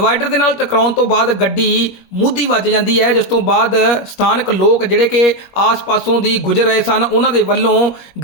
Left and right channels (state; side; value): late; right; 21 ms